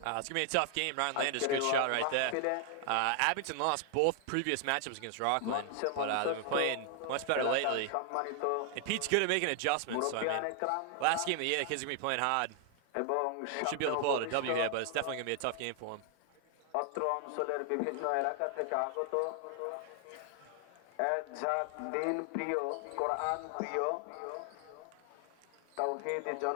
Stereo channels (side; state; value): both; different; correlation 0.00